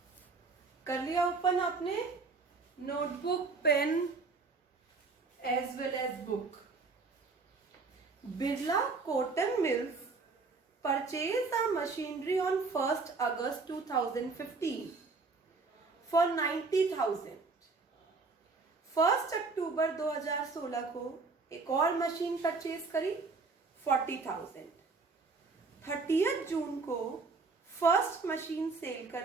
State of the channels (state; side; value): quieter; left; 4.1 dB